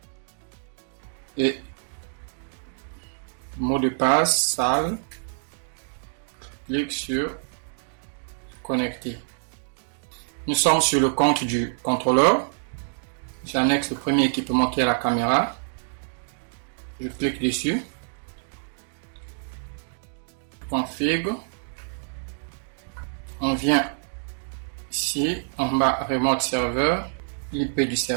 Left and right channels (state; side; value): silent; left; digital silence